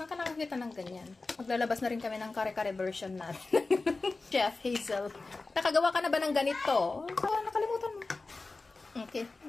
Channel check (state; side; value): quieter; right; 3.6 dB